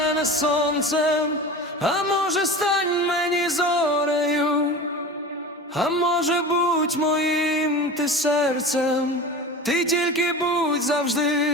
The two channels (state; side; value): normal; both; correlation 0.32